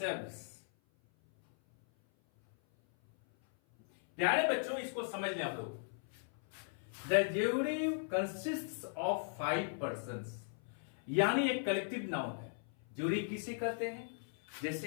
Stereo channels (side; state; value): right; silent; 53 dB below the other